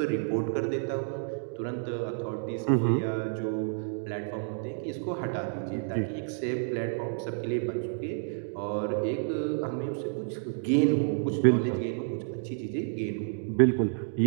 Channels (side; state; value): left; silent; digital silence